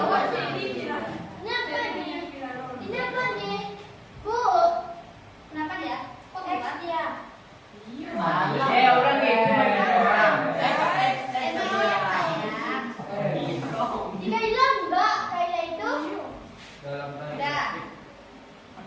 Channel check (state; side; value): identical; both; correlation 1.00